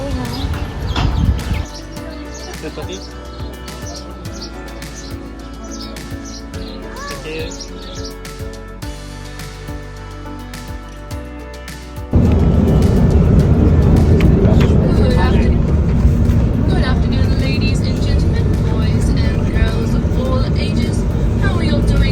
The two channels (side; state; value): both; identical; correlation 1.00